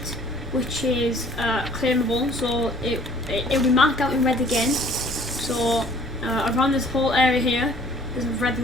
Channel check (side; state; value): both; normal; correlation 0.56